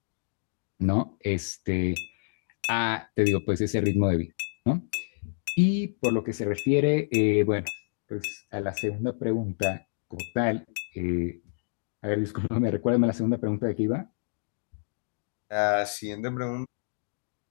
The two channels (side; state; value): right; silent; digital silence